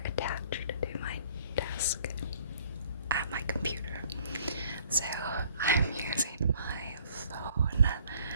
attached to my desk at my computer. So I'm using my phone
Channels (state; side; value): inverted; both; correlation -0.58